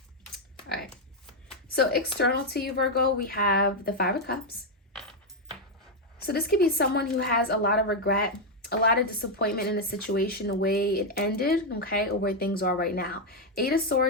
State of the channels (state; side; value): normal; both; correlation 0.02